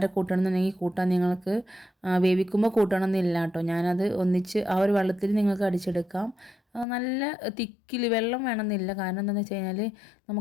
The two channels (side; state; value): right; drops out; at 6.9 s